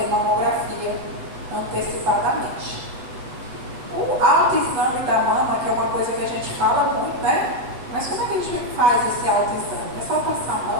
mamografia antecipadamente. O autoexame da mama, que é uma coisa que a gente fala muito, né? Mas como é que a gente faz esse autoexame? É só passar a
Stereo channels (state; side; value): late; left; 8.0 ms